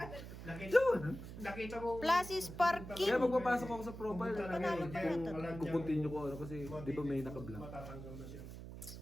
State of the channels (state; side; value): noise; right; hum, 11 dB below the sound